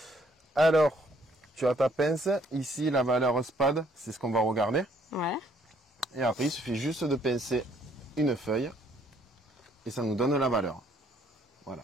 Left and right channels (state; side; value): normal; both; correlation 0.65